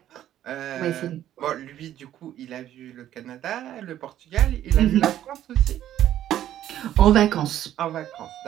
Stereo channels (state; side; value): quieter; left; 11.9 dB